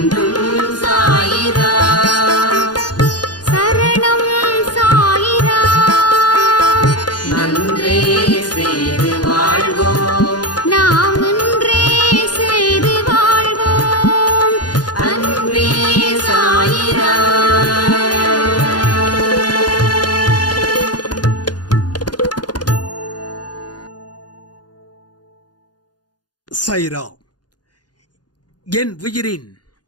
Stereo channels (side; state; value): right; late; 0.69 ms